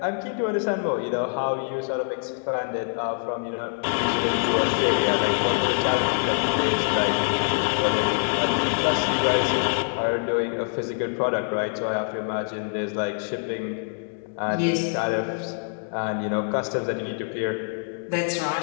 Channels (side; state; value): right; silent; digital silence